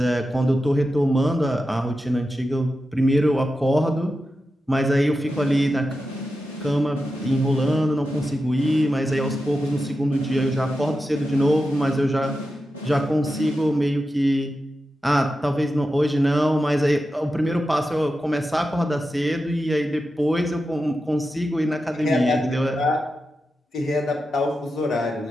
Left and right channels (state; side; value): normal; both; correlation 0.90